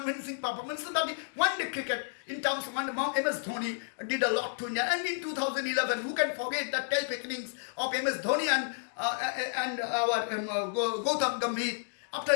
performances, but one-day cricket, in terms of MS Dhoni did a lot to India. And in 2011, who can forget the terrific innings of MS Dhoni and our Gautam Gambhir after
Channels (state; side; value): silent; right; digital silence